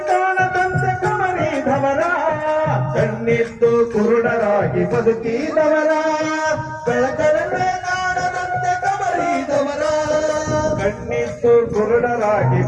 ಕಾಣದಂತೆ ಕಣ್ಣಿದ್ದು ಕುರುಡರಾಗಿ ಬದುಕಿದವರ ಬೆಳಕನ್ನೇ ಕಾಣದಂತೆ ಕಮರಿದವರ ಕಣ್ಣಿದ್ದು ಕುರುಡರಾಗಿ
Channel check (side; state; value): both; identical; correlation 1.00